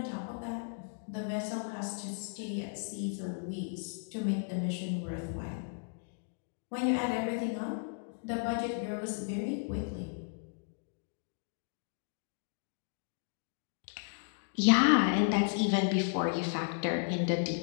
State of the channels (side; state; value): right; silent; digital silence